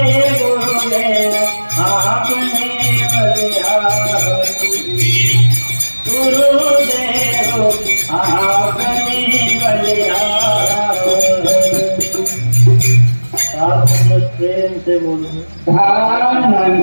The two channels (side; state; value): both; inverted; correlation -1.00